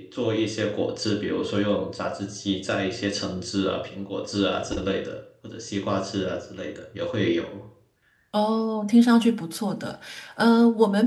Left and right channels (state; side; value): identical; both; correlation 1.00